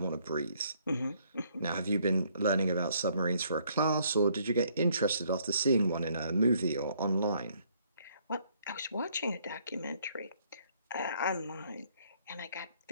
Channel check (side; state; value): both; inverted; correlation -0.66